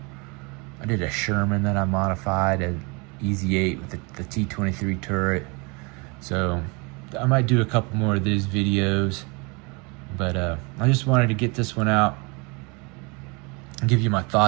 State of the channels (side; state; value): left; quieter; 29.6 dB